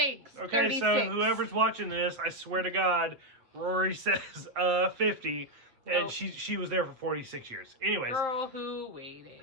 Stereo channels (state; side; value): late; left; 7.9 ms